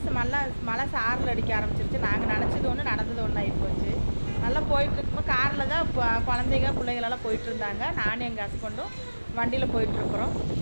மழை சாரல் அடிக்க ஆரம்பிச்சிருச்சு. நாங்கள் நினச்சது ஒன்று, நடந்தது ஒன்று ஆகிப்போச்சு. நல்லா போயிட்டுருக்கும்போது காரில் தான் குழந்தைங்க பிள்ளைங்களெல்லாம் போயிட்டுருந்தாங்க. நானும் எங்கள் ஹஸ்பண்டும் வண்டியில் போயிட்டுருக்குறோம்.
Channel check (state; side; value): inverted; both; correlation -1.00